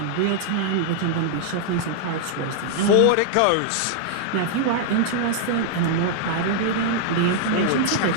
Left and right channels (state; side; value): different; both; correlation -0.01